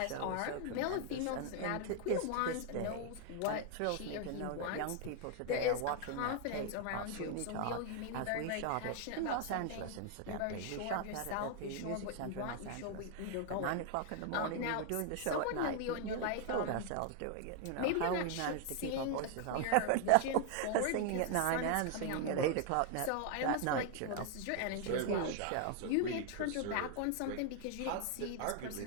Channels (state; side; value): different; both; correlation 0.00